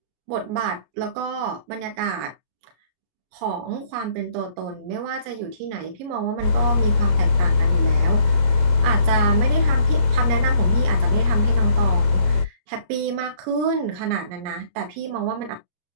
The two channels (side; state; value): left; late; 34 ms